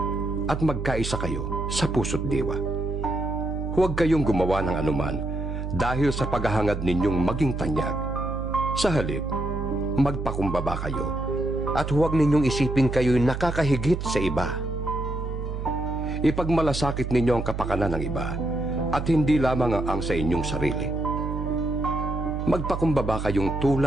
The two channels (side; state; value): right; noise; hum, 4 dB below the sound